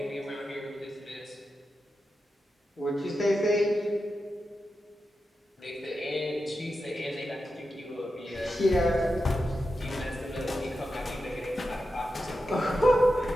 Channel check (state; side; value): normal; both; correlation 0.90